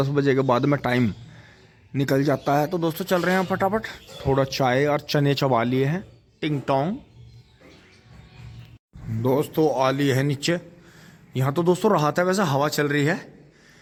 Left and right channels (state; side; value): identical; both; correlation 1.00